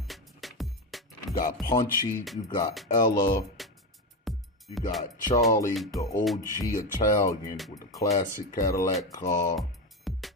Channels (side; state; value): both; normal; correlation 0.15